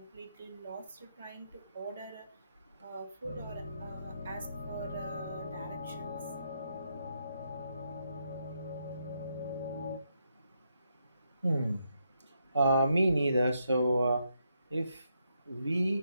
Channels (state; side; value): inverted; both; correlation -0.79